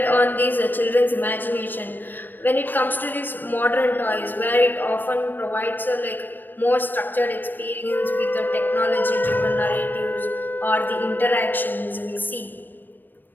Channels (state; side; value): late; right; 0.092 ms